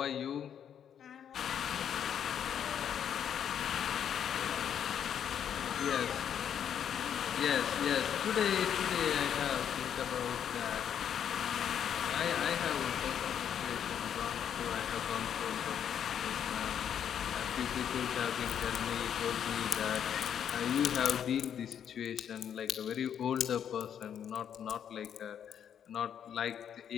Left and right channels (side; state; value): right; quieter; 8.9 dB